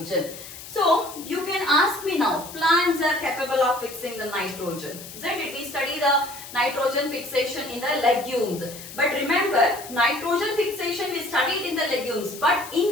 So, you can ask me now, plants are capable of fixing the nitrogen, isn't it? We study the nitrogen fixation in the legumes. But remember, nitrogen fixation we studied in the legumes. But in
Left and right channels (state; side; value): noise; left; hiss, 14 dB below the sound